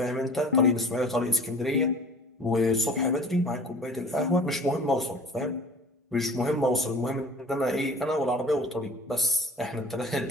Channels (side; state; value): both; normal; correlation 0.43